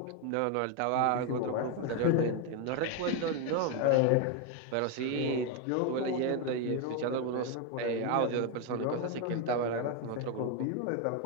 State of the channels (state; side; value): different; both; correlation 0.01